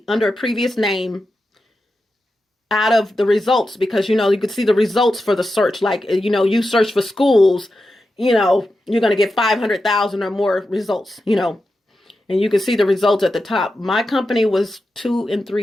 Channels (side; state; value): both; normal; correlation 0.90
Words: under a previous name out of the results because, you could see the results for the search. Like, you search for schools, you're going to get 500,000 or more results, and you can see the results at the top. My company was 2 and